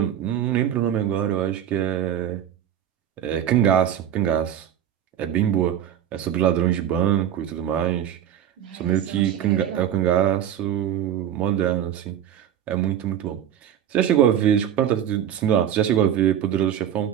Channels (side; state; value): left; quieter; 10.2 dB